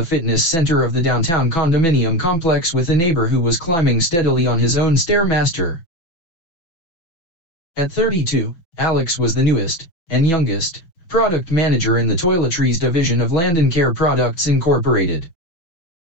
fitness center of the downtown condominium complex with a neighbor who was climbing steadily on his own Stairmaster. At 32, Alex was the newest, and youngest, product manager in the toiletries division of Landon Care Products Incorporated,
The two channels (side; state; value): right; late; 6.0 ms